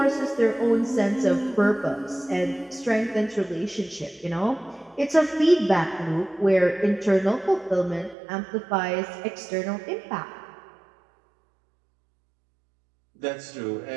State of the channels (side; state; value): left; drops out; at 8.2 s